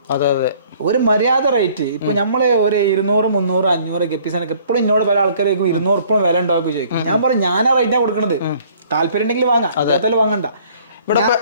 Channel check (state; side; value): inverted; both; correlation -0.57